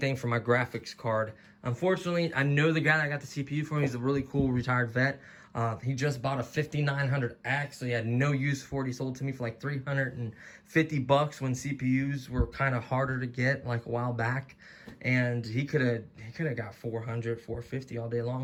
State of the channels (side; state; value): both; identical; correlation 1.00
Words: for my graphics card. Unfortunately, I know the guy that got the CPU for me. He's a really cool retired vet. He just bought a 5900X, so he had no use for it. He sold it to me for like $350 when CPUs were kind of harder to get, like a while back. And he could have got $400, $450 all day